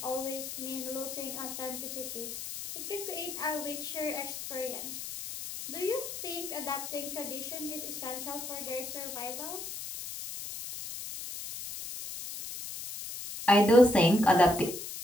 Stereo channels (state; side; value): noise; left; hiss, 8 dB below the sound